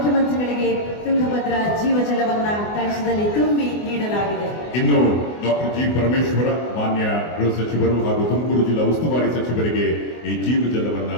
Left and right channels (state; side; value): late; right; 24 ms